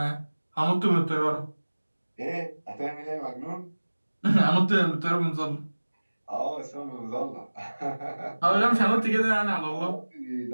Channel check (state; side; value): inverted; both; correlation -1.00